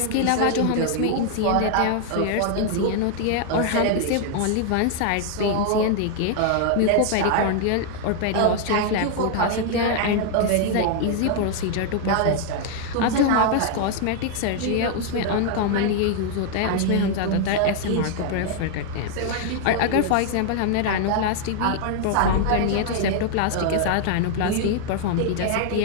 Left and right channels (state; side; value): different; both; correlation 0.00